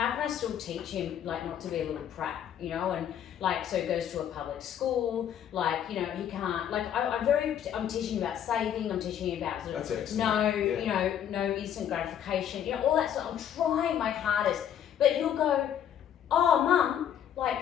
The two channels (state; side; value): quieter; right; 9.6 dB